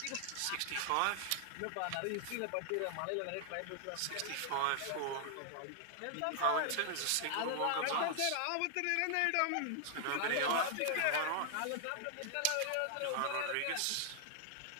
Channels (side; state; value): both; different; correlation 0.00